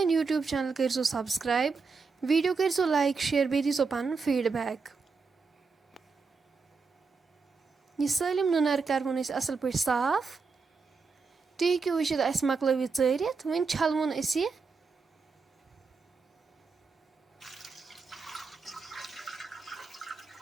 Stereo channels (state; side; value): quieter; left; 4.7 dB